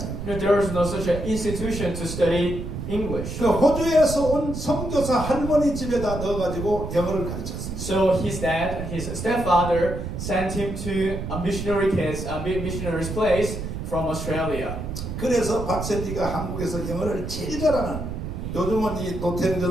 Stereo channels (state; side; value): noise; right; rumble, 6 dB below the sound